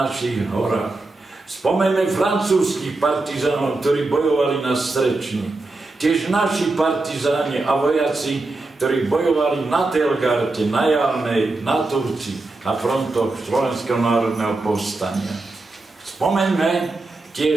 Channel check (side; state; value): left; quieter; 3.2 dB